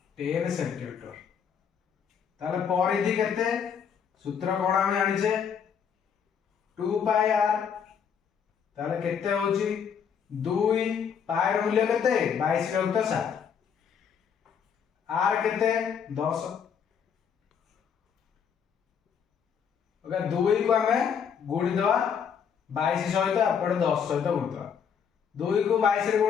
10 सेंटीमीटर। ताले परिधि केते सूत्र कोन हम जानि छे 2 पाई आर। ताले केते होछि 2 पाई र मूल्य केते 22 विभक्त 7 आर केते 10। ओके 2 को हमें गुणी दवा 22 सहित अपन 10 सहित गुणी दवा 2 को 22 रे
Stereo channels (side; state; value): right; quieter; 7.3 dB